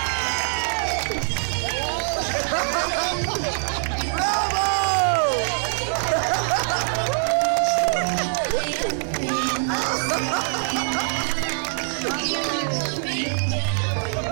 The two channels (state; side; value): silent; left; 63 dB below the other